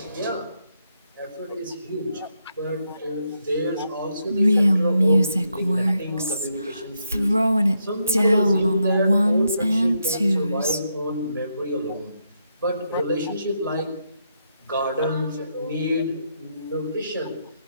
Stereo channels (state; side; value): inverted; both; correlation -0.80